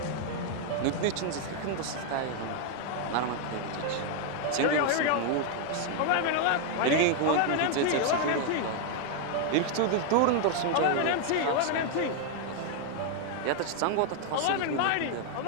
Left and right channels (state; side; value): different; both; correlation 0.00